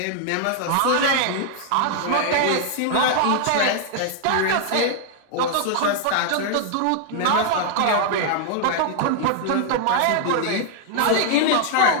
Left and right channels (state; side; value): different; both; correlation 0.00